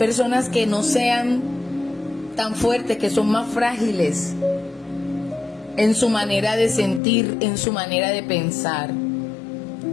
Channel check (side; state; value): right; drops out; at 7.0 s